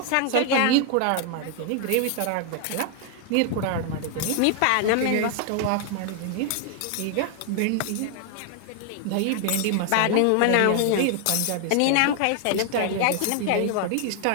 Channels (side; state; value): both; different; correlation 0.00